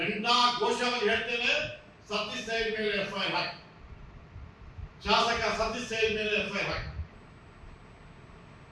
ಘೋಷವಾಗಿ ಹೇಳ್ತೇನೆ, ಸತೀಶ್ ಸೈಲ್ ಮೇಲೆ ಎಫ್ಐಆರ್ ಹಾಕಿ, ಶಾಸಕ ಸತೀಶ್ ಸೈಲ್ ಮೇಲೆ ಎಫ್ಐಆರ್ ಹಾಕಿ.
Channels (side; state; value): both; identical; correlation 1.00